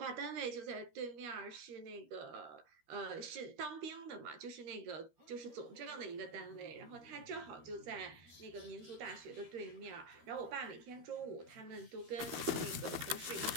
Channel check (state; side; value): late; left; 13 ms